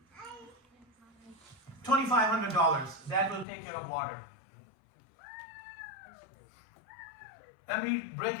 $2,500. That will take care of water. Let me break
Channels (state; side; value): drops out; right; at 3.5 s